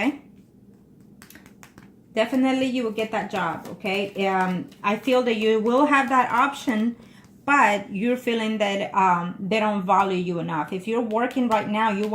definitely you will get that job. Okay, I feel that you will have that option, but you're feeling that they don't value you enough. If you're working right now, you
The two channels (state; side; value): identical; both; correlation 1.00